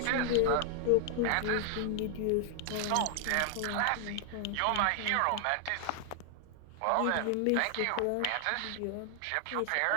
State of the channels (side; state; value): both; different; correlation 0.00